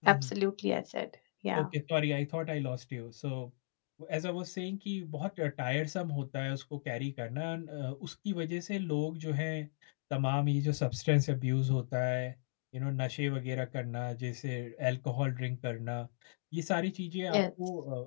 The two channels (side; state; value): right; silent; digital silence